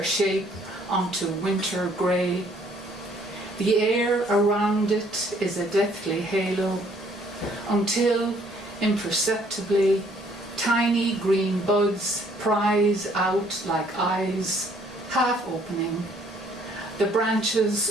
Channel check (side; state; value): both; normal; correlation 0.62